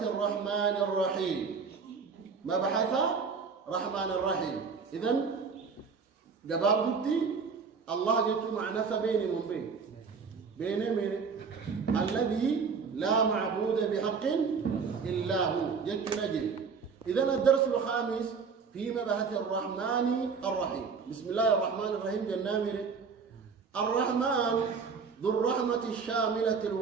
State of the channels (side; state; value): left; quieter; 5.4 dB